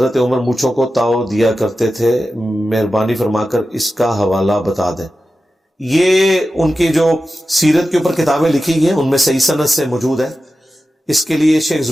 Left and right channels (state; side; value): normal; both; correlation 0.93